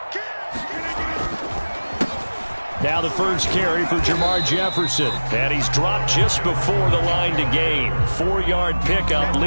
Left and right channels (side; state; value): both; inverted; correlation -1.00